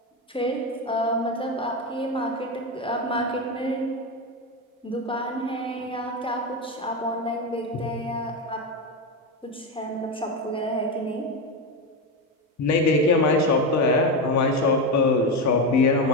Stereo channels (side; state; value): both; normal; correlation 0.14